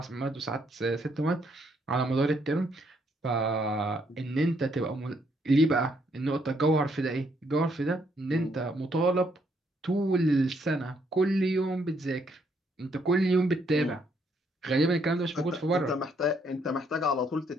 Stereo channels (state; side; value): normal; both; correlation 0.72